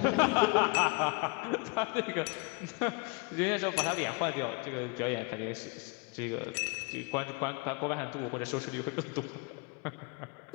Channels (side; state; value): right; quieter; 28.8 dB